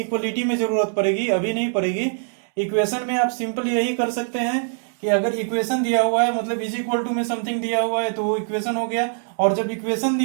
में जरूरत पड़ेगी, अभी नहीं पड़ेगी। इक्वेशन में आप सिंपल यही कर सकते हैं कि अगर इक्वेशन दिया हुआ है, मतलब इज इक्वल टू में समथिंग दिया हुआ है, तो वो इक्वेशन हो गया। और जब इक्वेशन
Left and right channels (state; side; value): silent; left; 62 dB below the other